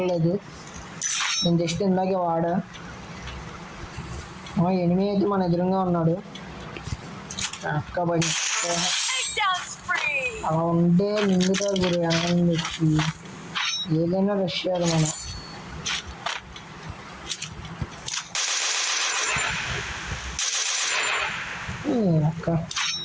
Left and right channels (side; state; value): both; identical; correlation 1.00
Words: నేను జస్ట్ ఇందాకే వాడా ఎనిమిది అయితే మన ఎదురుగా ఉన్నాడు అక్కబడి అలా ఉంటే నిండుతారు గురు అన్నం వచ్చి ఏదైనా రష్ చేయాలి మనం అక్క